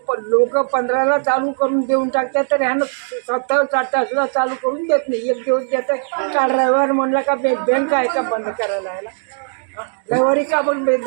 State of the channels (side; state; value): left; silent; digital silence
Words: लोक 15ला चालू करून देऊन टाकतात, तर ह्यानं 27-28 ला चालू करून देत नाही. एक दिवस देतात. काल रविवार म्हणला का बँक आहे का बंद करायला यायला? रविवारी का पण